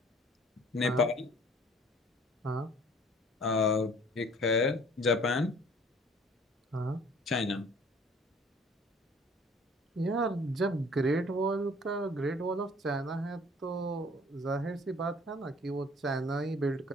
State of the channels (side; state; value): both; normal; correlation 0.53